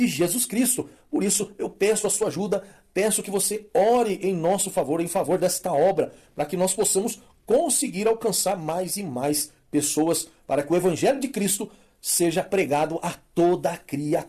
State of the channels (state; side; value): identical; both; correlation 1.00